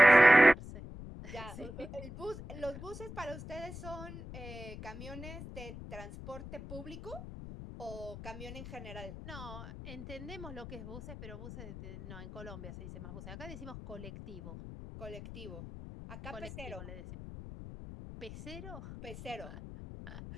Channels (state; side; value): noise; left; rumble, 11 dB below the sound